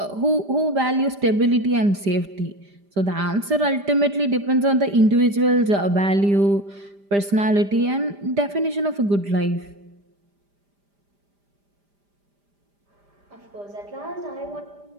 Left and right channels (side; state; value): left; late; 5.0 ms